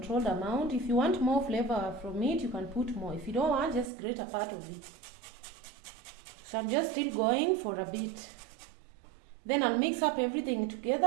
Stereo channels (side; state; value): left; drops out; at 3.9 s